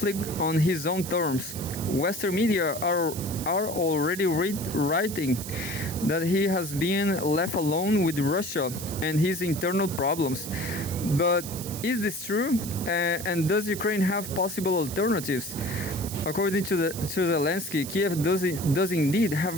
on his own terms. Western media are already writing that he has been left alone with Russia and his internal problems. But is this true? And does Ukraine have possible alternatives? According to Zelensky, Kiev does indeed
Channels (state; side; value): noise; right; hiss, 10 dB below the sound